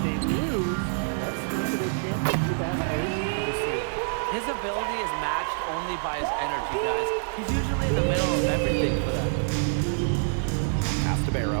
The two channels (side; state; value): left; silent; digital silence